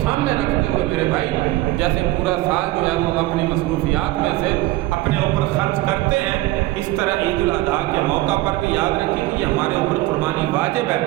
رکھتے ہوئے میرے بھائی، جیسے پورا سال جو ہے وہ ہم اپنی مصروفیات میں سے اپنے اوپر خرچ کرتے ہیں، اس طرح عید الاضحیٰ کے موقع پر بھی یاد رکھیں کہ یہ ہمارے اوپر قربانی واجب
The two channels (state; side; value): quieter; left; 17.8 dB